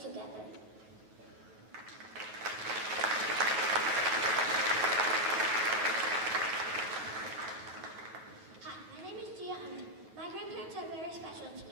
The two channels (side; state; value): left; late; 9.1 ms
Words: together. Hi, my name is Gia Hunter. My grandparents are very special to